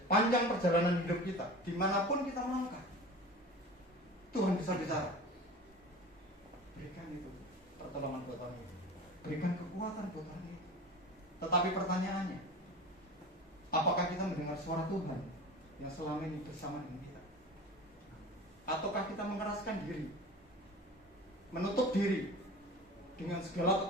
perjalanan hidup kita, dimanapun kita melangkah, Tuhan bisa bicara. Berikan itu pertolongan buat orang itu, berikan kekuatan buat orang itu. Tetapi pertanyaannya, apakah kita mendengar suara Tuhan yang selama ini bersama dengan kita? Ataukah kita mengeraskan diri, menutup diri dengan segala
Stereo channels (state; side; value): normal; both; correlation 0.35